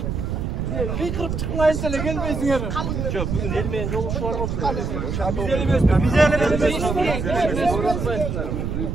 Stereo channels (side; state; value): right; noise; rumble, 2 dB below the sound